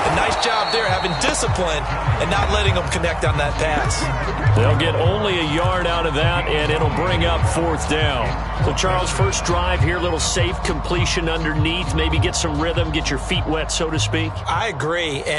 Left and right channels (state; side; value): identical; both; correlation 1.00